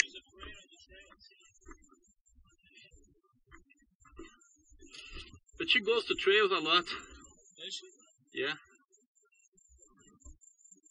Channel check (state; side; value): identical; both; correlation 1.00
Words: afraid of the trails. But she goes to trails a lot. Does she? Yeah.